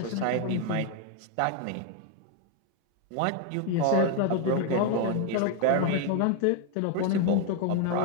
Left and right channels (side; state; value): both; different; correlation 0.01